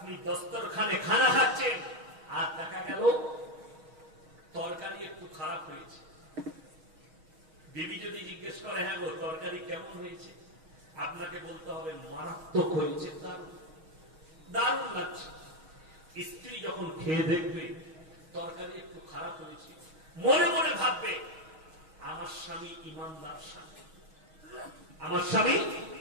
দস্তরখানে খানা খাচ্ছেন আর দেখা গেল তরকারি একটু খারাপ হয়েছে। বিবি যদি জিজ্ঞেস করে হ্যাঁ গো তরকারি কেমন হয়েছে, আপনাকে বলতে হবে মারাত্মক হয়েছে, দারুণ দারুণ লাগছে। স্ত্রী যখন খেয়ে দেখবে তরকারি একটু খারাপ হয়েছে, মনে মনে ভাববে আমার স্বামী ইমানদার স্বামী, আমার স্বামী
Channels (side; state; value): left; late; 6.3 ms